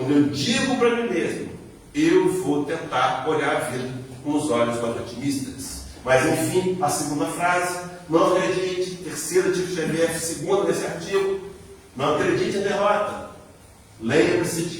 eu digo para mim mesmo, eu vou tentar olhar a vida com os olhos mais otimistas. Mas enfim, a segunda frase: não acredite. Terceira de Xavier, segunda desse artigo: não acredite em derrota. Lembre-se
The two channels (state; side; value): identical; both; correlation 1.00